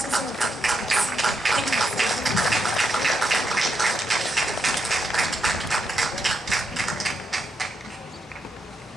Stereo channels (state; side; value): normal; both; correlation 0.82